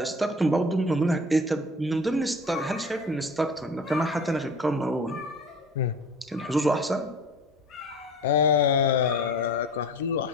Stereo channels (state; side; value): normal; both; correlation 0.40